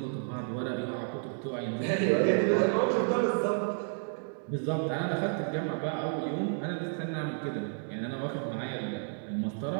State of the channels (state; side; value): silent; left; 57 dB below the other